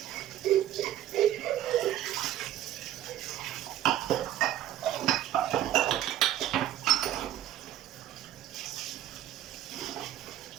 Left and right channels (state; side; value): quieter; left; 12.7 dB